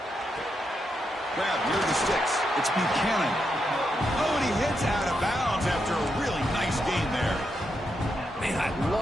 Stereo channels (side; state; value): both; normal; correlation 0.83